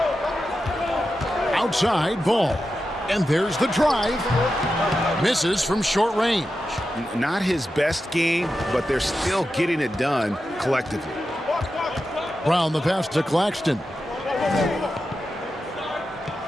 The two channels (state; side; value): normal; both; correlation 0.90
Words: Outside ball. And there's the drive. Misses from short range. Not his best game, but they're still getting it done collectively. Brown the pass to Claxton.